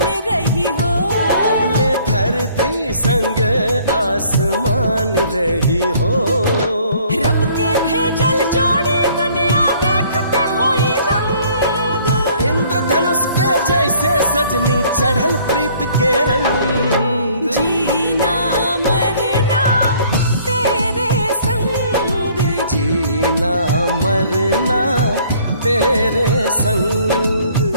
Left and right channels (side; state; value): both; inverted; correlation -0.58